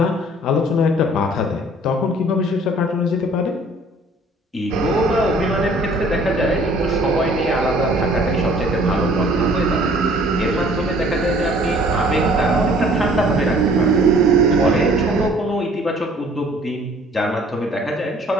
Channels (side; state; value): both; normal; correlation 0.54